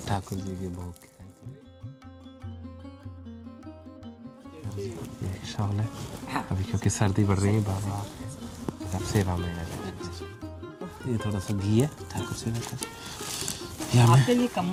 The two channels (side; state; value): both; identical; correlation 1.00